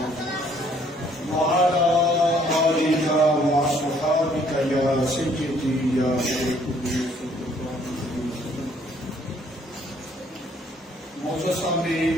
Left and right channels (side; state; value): both; normal; correlation 0.63